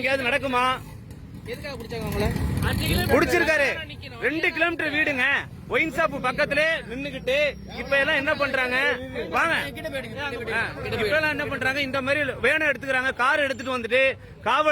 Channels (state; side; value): identical; both; correlation 1.00